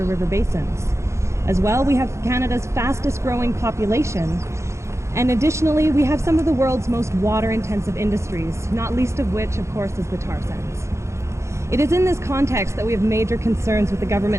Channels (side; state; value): left; late; 0.14 ms